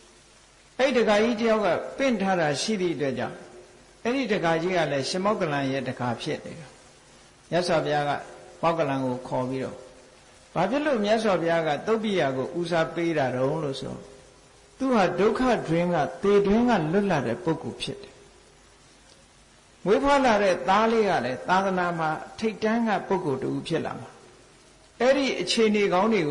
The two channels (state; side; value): identical; both; correlation 1.00